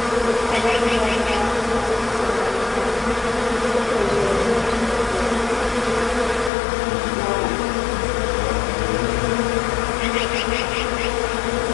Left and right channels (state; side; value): drops out; right; at 6.5 s